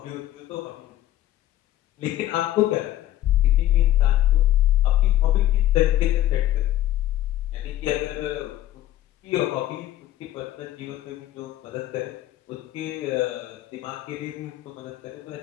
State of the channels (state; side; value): quieter; right; 13.7 dB